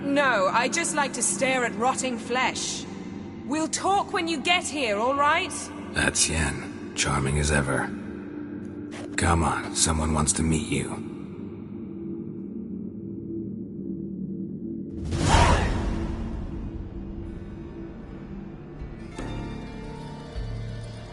No, I just like to stare at rotting flesh. We'll talk when you get here, all right? That's Yen. Charming as ever. Come on, someone wants to meet you.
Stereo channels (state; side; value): identical; both; correlation 1.00